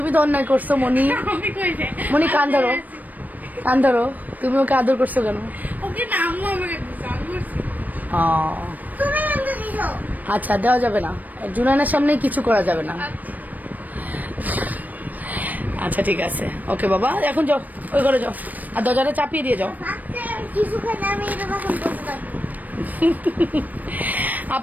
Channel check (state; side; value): late; left; 0.081 ms